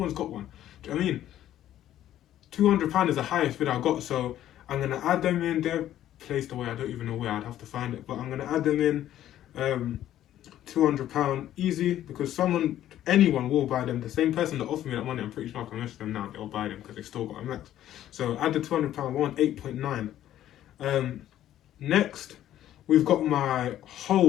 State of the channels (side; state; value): right; quieter; 12.3 dB